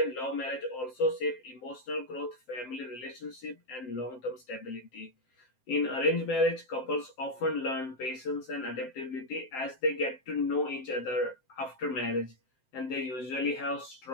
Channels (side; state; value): right; late; 7.7 ms